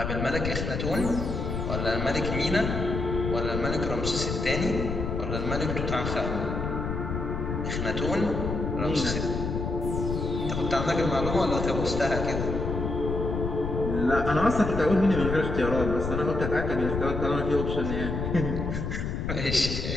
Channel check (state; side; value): noise; left; rumble, 3 dB below the sound